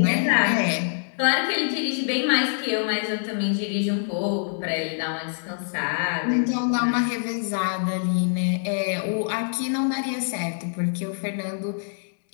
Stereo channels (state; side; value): silent; right; 62 dB below the other